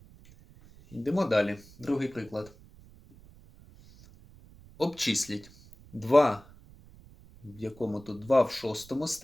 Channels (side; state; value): right; noise; rumble, 23 dB below the sound